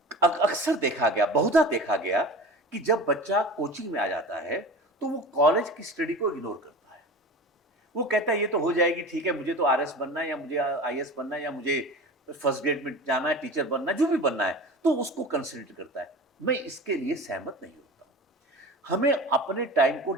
अक्सर देखा गया, बहुधा देखा गया कि जब बच्चा कोचिंग में आ जाता है तो वो कॉलेज की स्टडी को इग्नोर करता है। वो कहता है ये तो हो जाएगी, ठीक है, मुझे तो आरएस बनना है या मुझे आईएएस बनना है या मुझे फर्स्ट ग्रेड में जाना है, टीचर बनना है, जो भी बनना है, तो उसको कंसिडर करता है। मैं इसके लिए सहमत नहीं होता। हमें अपने टाइम को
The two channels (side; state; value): both; normal; correlation 0.35